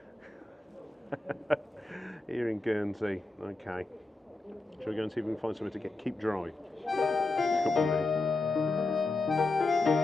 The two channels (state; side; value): quieter; right; 3.2 dB